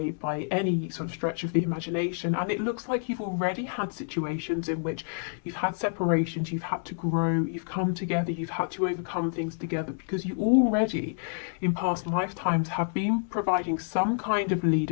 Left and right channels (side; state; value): right; silent; 59 dB below the other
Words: any sort of stretch of the imagination. And it looks like you've already had situations in which you've had separations, you've had to grow, you've come together, you've had to overcome things together, because you already in past lifetimes have been providing some kind of